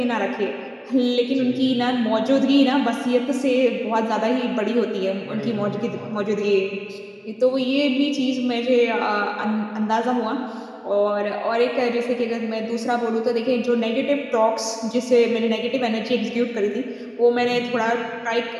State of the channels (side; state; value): both; identical; correlation 1.00